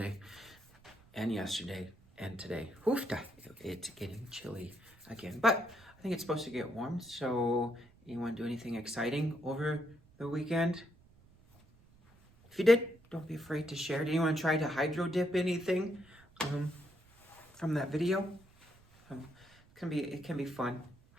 and yesterday and today. Hoofda, it's getting chilly again, but I think it's supposed to get warm. So anyone do anything exciting over the weekend? If you did, don't be afraid to share. Did anyone try to hydro dip anything from that video? It can be fun,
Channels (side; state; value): right; noise; rumble, 27 dB below the sound